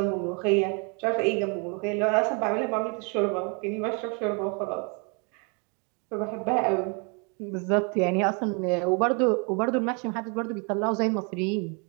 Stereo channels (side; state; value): left; quieter; 34.8 dB